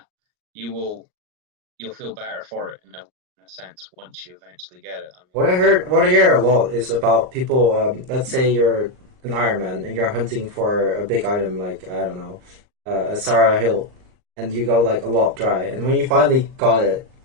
you'll feel better for it in a sense once you eventually get it. I mean, what I hear a lot is about people. Let's say you're an Iron Man and you're hunting for a big item like, I don't know, a Sarah Hill, and you go like a lot dry, and when you finally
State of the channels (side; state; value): left; late; 38 ms